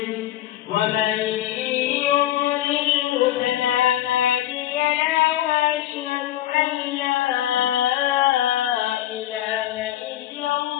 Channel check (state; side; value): quieter; right; 13.5 dB